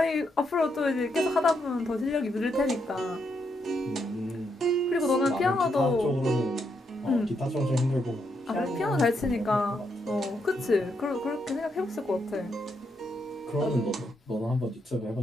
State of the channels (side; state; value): both; normal; correlation 0.79